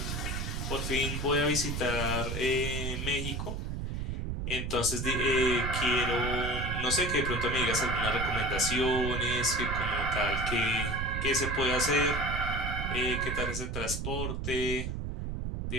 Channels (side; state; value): right; noise; rumble, 3 dB below the sound